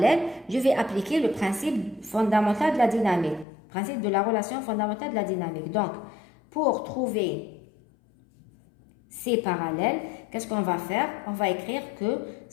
Je vais appliquer le principe fondamental de la dynamique. Principe de la relation fondamentale de la dynamique. Donc, pour trouver C parallèle, qu'est-ce qu'on va faire? On va écrire que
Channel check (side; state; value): right; drops out; at 3.5 s